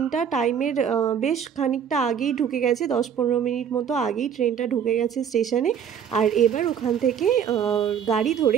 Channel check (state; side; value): quieter; left; 8.1 dB